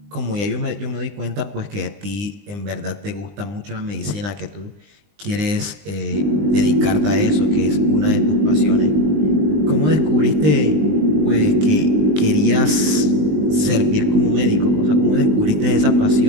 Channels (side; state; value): left; late; 20 ms